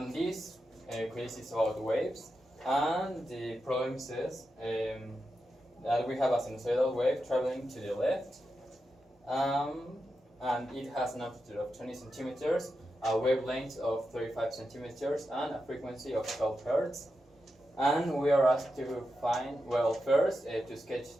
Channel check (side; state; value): both; normal; correlation 0.88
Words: this quiz is about waves, and the problem says that we have a sinusoidal wave traveling to the left, and it has an amplitude of 20 centimeters, a wavelength of 35 centimeters, and a frequency of 12 hertz. And we are asked to find, well, first to sketch